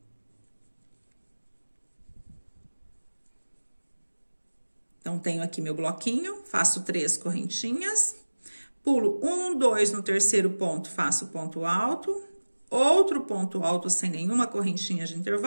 Então, tenho aqui meu bloquinho, faço 3 correntinhas, pulo 1, 2 no terceiro ponto, faço ponto alto, outro ponto alto sem nenhuma correntinha de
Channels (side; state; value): both; inverted; correlation -1.00